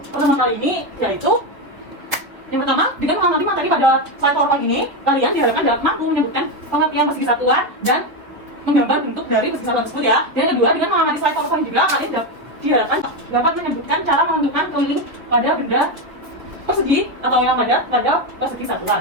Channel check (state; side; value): late; left; 3.1 ms